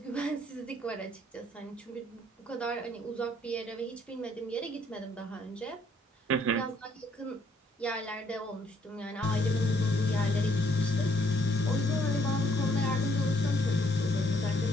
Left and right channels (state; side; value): normal; both; correlation 0.67